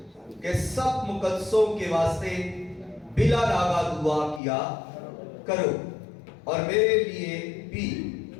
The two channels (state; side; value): drops out; right; at 4.4 s